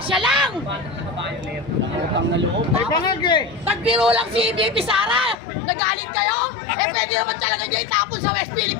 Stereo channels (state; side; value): drops out; right; at 5.4 s